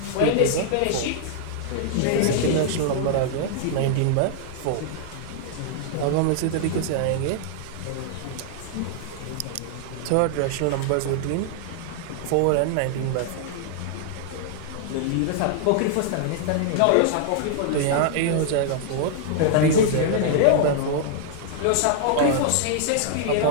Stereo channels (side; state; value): both; different; correlation -0.01